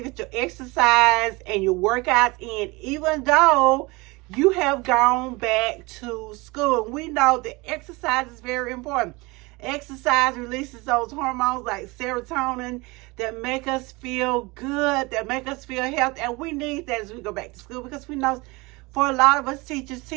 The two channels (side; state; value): left; quieter; 24.3 dB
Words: get your exercise and your workouts in, even though you have gone back to school. We know that exercise is very important. Exercise releases those hormones like serotonin that make us feel good, that make us feel healthy, and we need that as we go back to school, because we know for a lot of us teachers,